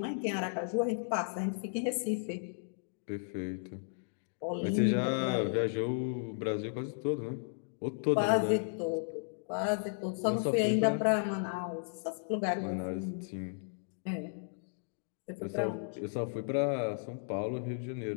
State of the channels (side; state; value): right; silent; digital silence